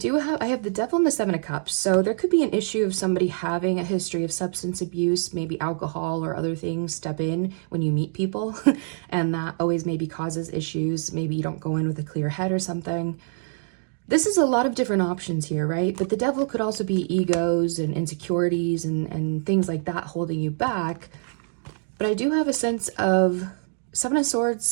the Devil and the Seven of Cups. So there could be an issue of somebody having a history of substance abuse, maybe alcohol or other things step in when you meet people. And that always maybe causes issues. Maybe you don't go in with a clear head or something. This is a lot of different options here, right? But the Devil could also be egos and insecurities and things like that holding you back. But I do have a sense of Seven of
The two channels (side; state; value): left; silent; digital silence